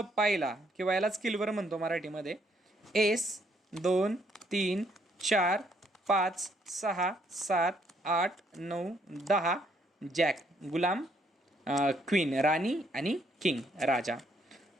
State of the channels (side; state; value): both; normal; correlation 0.70